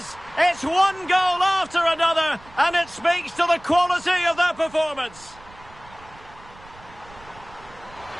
It's one goal after another, and it speaks to the quality of their performance.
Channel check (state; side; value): noise; right; rumble, 22 dB below the sound